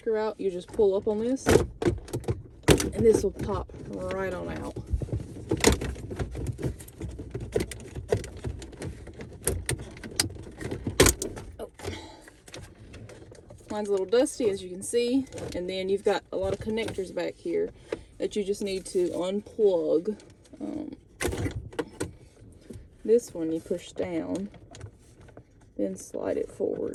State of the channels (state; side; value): identical; both; correlation 1.00